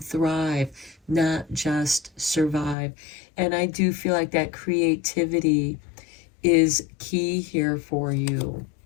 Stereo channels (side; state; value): right; drops out; at 2.8 s